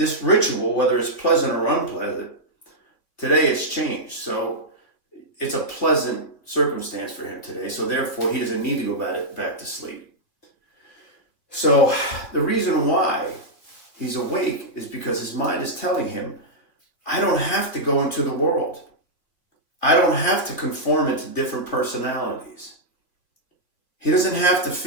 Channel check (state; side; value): late; right; 2.8 ms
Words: ritual, whether it's pleasant or unpleasant, today it's changed. So it's a pleasant circumstance for him today. So therefore, he doesn't need to go back to sleep. So the reason why he's awake is because his mind is telling him, I don't have to go into the world. I don't have to conform into different personalities. He doesn't have to